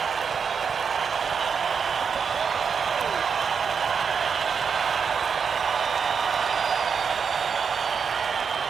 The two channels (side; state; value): left; quieter; 6.2 dB